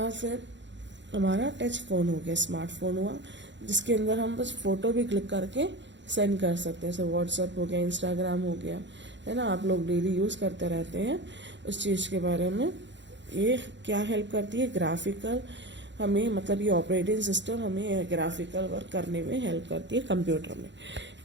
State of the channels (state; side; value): late; left; 0.53 ms